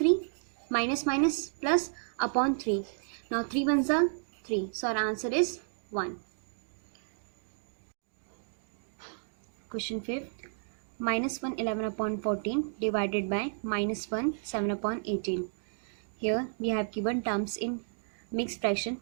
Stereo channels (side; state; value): left; silent; digital silence